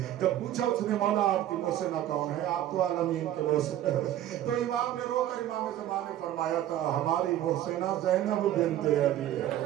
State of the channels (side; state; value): left; quieter; 12.4 dB